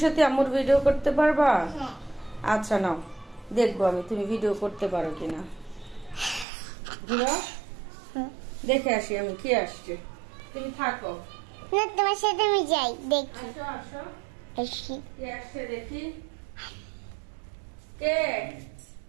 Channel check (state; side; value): drops out; left; at 6.5 s